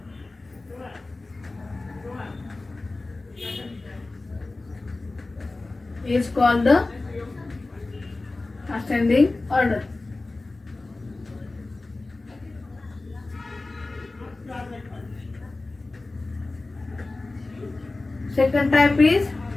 Is called the ascending order. Second type is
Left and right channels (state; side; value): quieter; right; 3.2 dB